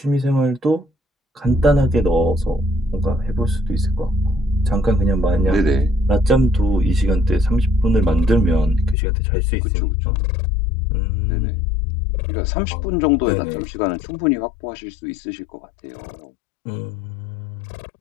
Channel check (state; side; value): drops out; right; at 9.0 s